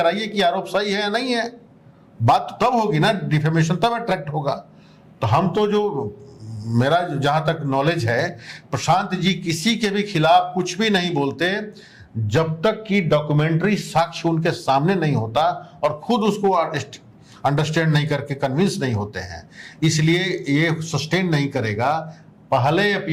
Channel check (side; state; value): both; identical; correlation 1.00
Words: कि आरोप सही है या नहीं है। बात तो तब होगी ना, डिफेमेशन तब अट्रैक्ट होगा। तो हम तो, जो मेरा जहां तक नॉलेज है, प्रशांत जी किसी के भी खिलाफ कुछ भी नहीं बोलते जब तक कि डॉक्यूमेंट्री साक्ष्य उनके सामने नहीं होता और खुद उसको अंडरस्टैंड नहीं करके कन्विंस नहीं होते हैं। इसलिए ये सस्टेन नहीं करेगा। पहले